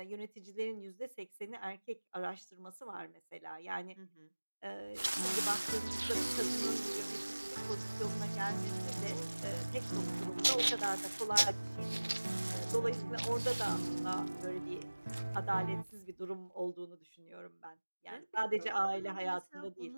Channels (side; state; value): both; inverted; correlation -1.00